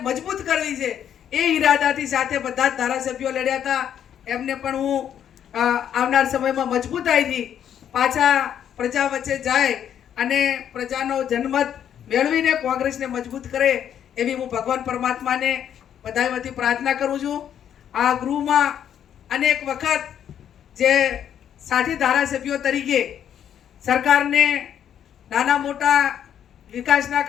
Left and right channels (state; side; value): quieter; right; 9.5 dB